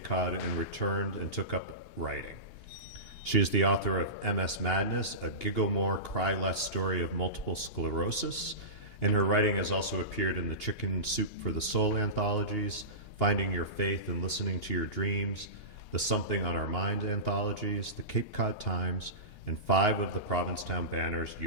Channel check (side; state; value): right; late; 2.8 ms